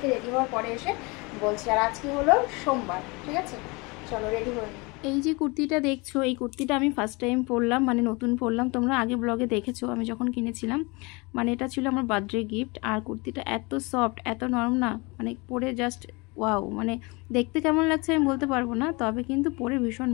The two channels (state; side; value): quieter; right; 26.9 dB